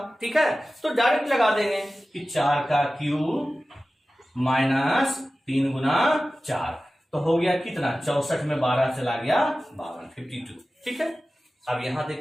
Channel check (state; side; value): normal; both; correlation 0.96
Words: ठीक है, तो डायरेक्ट लगा देंगे कि 4 का क्यूब माइनस 3 गुना 4, तो हो गया कितना 64 में 12 चला गया 52। ठीक है, अब यहां